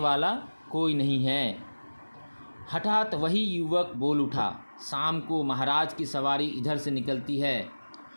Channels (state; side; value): inverted; both; correlation -1.00